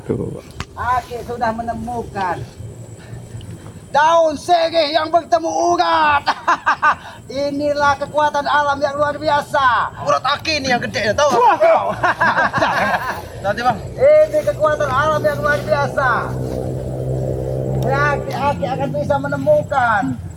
Aki sudah menemukan daun sirih yang bertemu urat. Inilah kekuatan alam yang luar biasa. Urat Aki ini yang gede, tahu? Nanti bang. Ini kekuatan alam yang luar biasa. Berarti Aki akan bisa menemukan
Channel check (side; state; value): both; identical; correlation 1.00